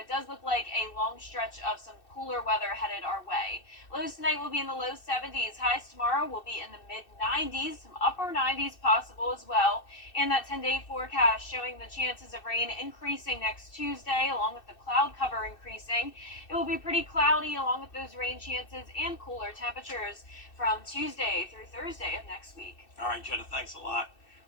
does look like a long stretch of some cooler weather headed our way. Lows tonight will be in the low 70s. Highs tomorrow will be in the mid 90s, some upper 90s possible as well. And that 10-day forecast showing the chances of rain increasing next Tuesday, along with the cloud cover increasing. It will be pretty cloudy along with those rain chances and cooler temperatures from Tuesday through Thursday of next week. All right, Jenna, thanks a lot.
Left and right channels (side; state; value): right; late; 2.6 ms